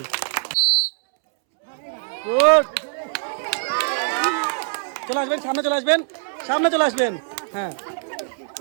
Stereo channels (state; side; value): silent; left; 64 dB below the other